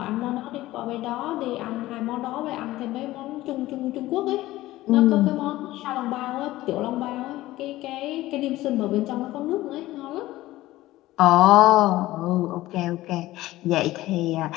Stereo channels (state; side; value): quieter; right; 16.6 dB